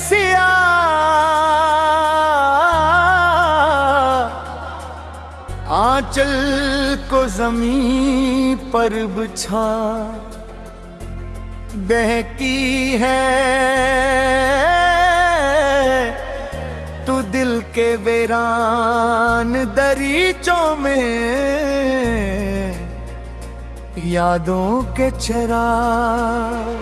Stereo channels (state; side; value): identical; both; correlation 1.00